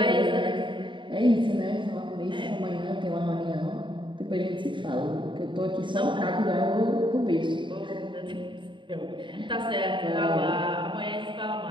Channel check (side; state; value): left; late; 0.23 ms